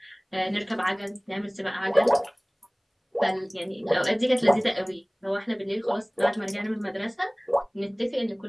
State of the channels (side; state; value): both; identical; correlation 1.00